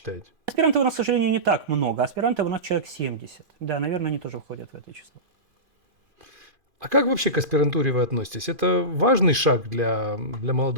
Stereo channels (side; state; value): left; late; 2.4 ms